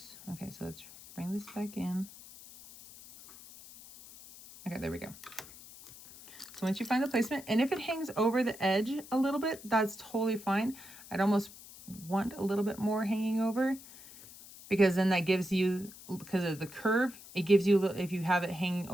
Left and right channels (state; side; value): noise; left; hiss, 18 dB below the sound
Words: Okay, so let's bring this back in. Okay, there we go. So once you find the placement, and if it hangs over the edge a little bit, that's totally fine. I'd almost want a little bit more hanging over, because then that gives you, because of the curve, it gives you, if you have it hanging